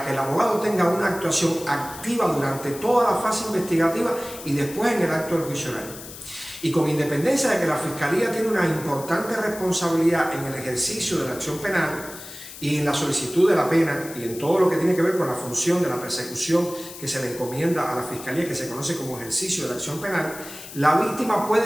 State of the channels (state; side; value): noise; left; hiss, 14 dB below the sound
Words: que el abogado tenga una actuación activa durante toda la fase investigativa y después en el acto del juicio oral. Y con independencia de que la Fiscalía tiene una importante responsabilidad en el ejercicio de la acción penal y en la solicitud de la pena y en todo lo que tiene que ver con la función de la persecución que se le encomienda a la Fiscalía, que se conoce como ejercicio de la acción penal, la víctima puede